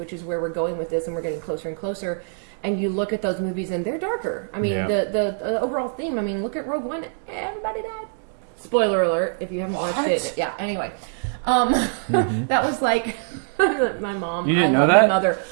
is where we're going with this, and we're getting closer and closer, and you look at those movies and they're darker. I mean, Yeah. the overall theme. I mean, look at Rogue One. Everybody died. Spoiler alert! If you haven't watched it, yeah. Anyway, that was like my mom. You didn't I know love that? my mother,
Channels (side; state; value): left; silent; digital silence